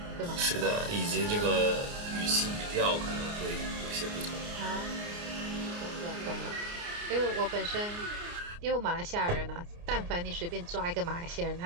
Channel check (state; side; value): late; left; 29 ms